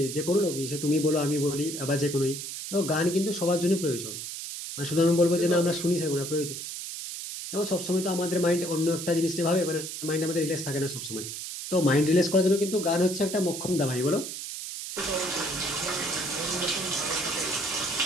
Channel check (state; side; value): noise; right; hiss, 7 dB below the sound